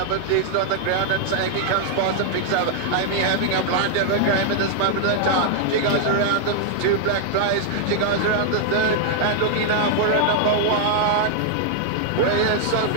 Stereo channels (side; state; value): both; different; correlation -0.01